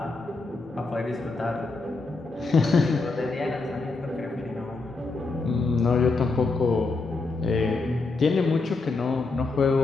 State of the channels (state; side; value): quieter; right; 3.7 dB